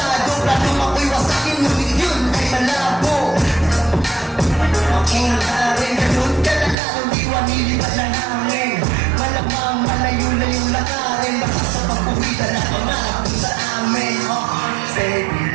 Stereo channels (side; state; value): left; drops out; at 6.8 s